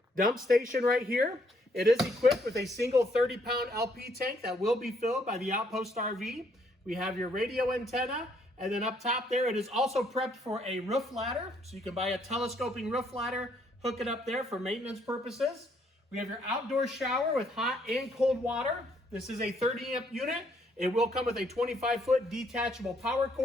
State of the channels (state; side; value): normal; both; correlation 0.69